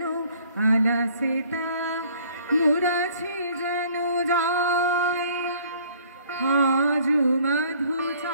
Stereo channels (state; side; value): inverted; both; correlation -0.57